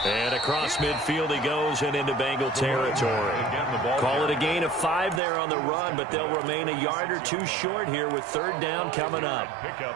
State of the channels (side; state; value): left; drops out; at 5.2 s